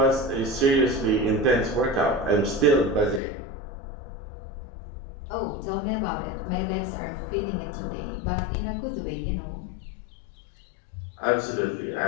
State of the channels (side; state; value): right; drops out; at 3.2 s